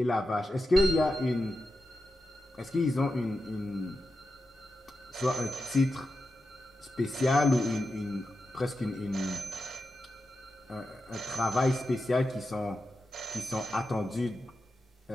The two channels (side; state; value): both; normal; correlation 0.90